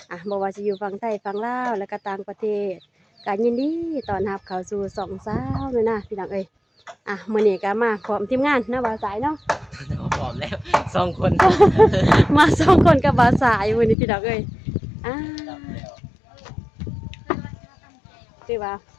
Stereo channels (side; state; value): right; drops out; at 14.0 s